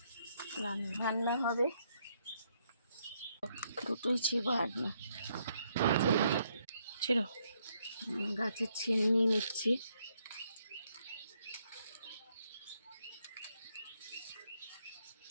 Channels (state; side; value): inverted; both; correlation -0.74